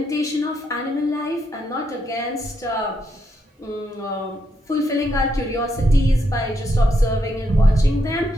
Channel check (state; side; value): normal; both; correlation 0.79